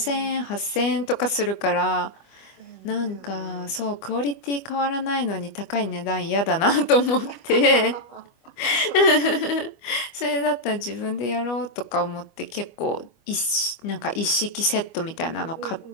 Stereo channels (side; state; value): right; late; 25 ms